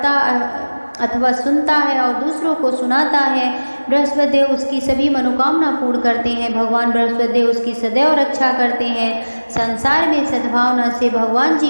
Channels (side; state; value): both; inverted; correlation -1.00